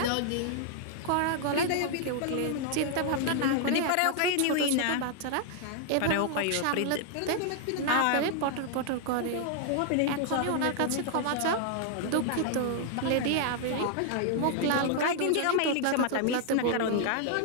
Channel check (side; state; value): both; different; correlation 0.00